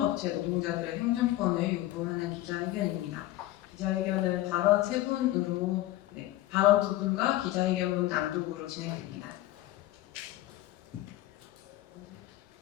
노동자들의 행정권을 요구하는 기자회견입니다. 기자회견은 발언 3분으로 발언 2분과 기자회견문 낭독으로 진행됩니다.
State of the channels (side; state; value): right; quieter; 15.7 dB